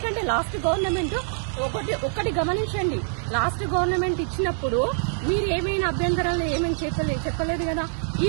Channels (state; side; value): silent; left; digital silence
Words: లాస్ట్ గవర్నమెంట్ ఒకటి గమనించండి, లాస్ట్ గవర్నమెంట్ ఇచ్చినప్పుడు మీరు ఏమైనా అభ్యంతరాలు ఏమైనా చెప్పలేదు కదా. ఈ